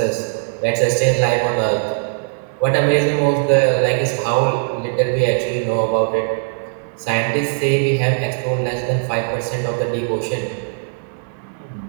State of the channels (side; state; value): left; silent; 64 dB below the other